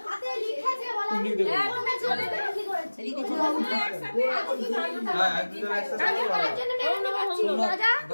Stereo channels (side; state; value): both; inverted; correlation -1.00